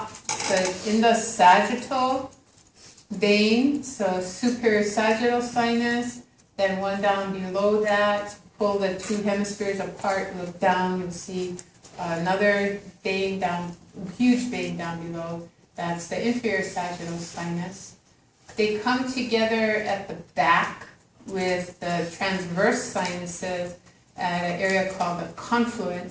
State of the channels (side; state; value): both; identical; correlation 1.00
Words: in the sagittal vein, so superior sagittal sinus, then one down below that. Pull the two hemispheres apart, look down, you'll see another vein down, huge vein down below. That's the inferior sagittal sinus. They come together at the back with the transverse sinuses at an area called the